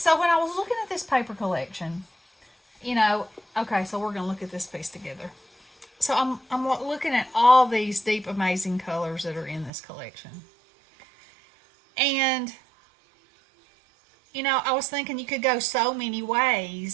when I was looking at this paper collection, okay, so we're going to look at this piece together. So I'm looking at all these deep, amazing colors that are in this collection. And, I was thinking you could go so many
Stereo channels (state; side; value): drops out; left; at 9.7 s